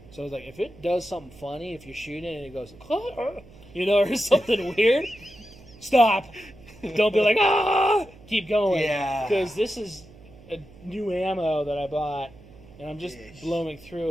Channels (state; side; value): noise; right; hum, 22 dB below the sound